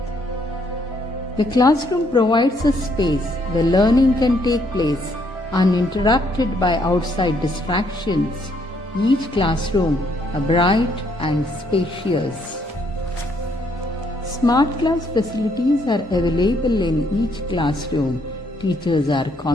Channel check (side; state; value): both; normal; correlation 0.70